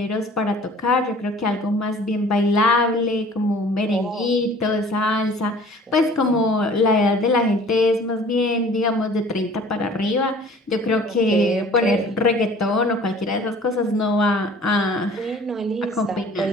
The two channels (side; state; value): both; normal; correlation 0.49